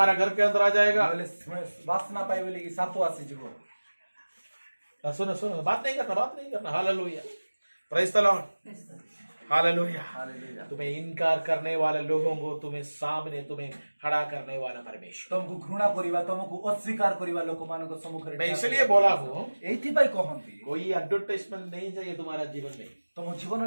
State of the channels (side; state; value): both; inverted; correlation -1.00